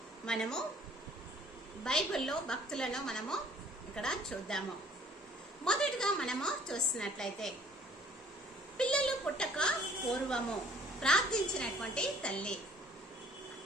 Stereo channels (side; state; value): both; normal; correlation 0.56